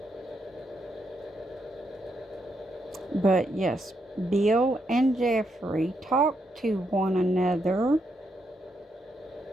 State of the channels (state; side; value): normal; both; correlation 0.80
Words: But yes, Bill and Jeffrey talked to one another